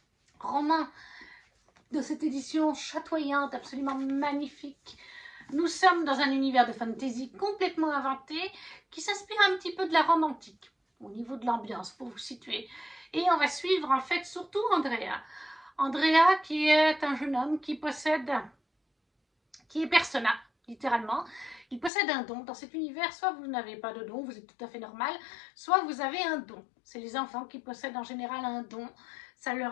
Roman de cette édition chatoyante, absolument magnifique. Nous sommes dans un univers de fantasy complètement inventé qui s'inspire un petit peu de la Rome antique au niveau de l'ambiance, pour vous situer. Et on va suivre en fait surtout Andrea. Andrea qui est un jeune homme qui est Persona, littéralement. Il possède un don. Dans cet univers, soit vous n'avez pas de don, vous êtes tout à fait normal, soit vous avez un don. C'est les enfants qui possèdent en général un don. Ça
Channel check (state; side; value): drops out; right; at 21.9 s